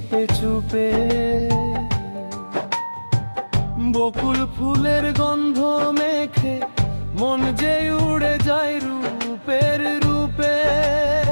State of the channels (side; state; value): both; inverted; correlation -1.00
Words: চুপে, বকুল ফুলের গন্ধ মেখে মন যে উড়ে যায় রূপের রূপে।